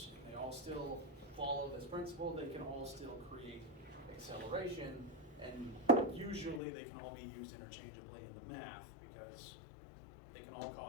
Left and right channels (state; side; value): drops out; right; at 6.6 s